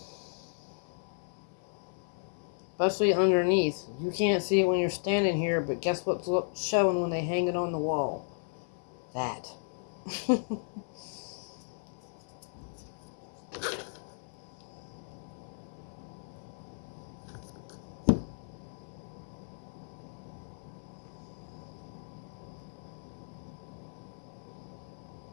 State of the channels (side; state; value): right; silent; 55 dB below the other